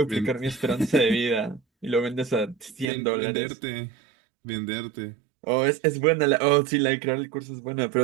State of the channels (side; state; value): left; drops out; at 2.9 s